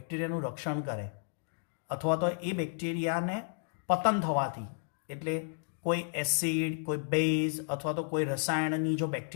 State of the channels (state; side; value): silent; right; digital silence